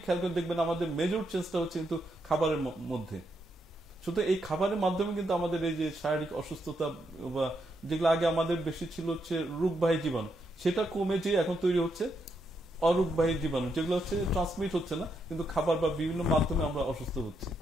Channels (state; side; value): normal; both; correlation 0.80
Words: খেয়াল করে দেখবেন, আমাদের মেজর চেঞ্জটা হচ্ছে কিন্তু খাবারের মধ্যে। শুধু এই খাবারের মাধ্যমে কিন্তু আমাদের এই যে শারীরিক অসুস্থতা বা যেগুলো আগে আমাদের বেশি ছিল হচ্ছে রোগবাহী জীবাণু, সেটা কমে যে এখন তৈরি হচ্ছে অরোগবাহী জীবাণু, যেগুলো হচ্ছে ট্রান্সমিট হচ্ছে না, কিন্তু খাবার বা বিভিন্ন মাধ্যমে আমরা অসুস্থ হচ্ছি।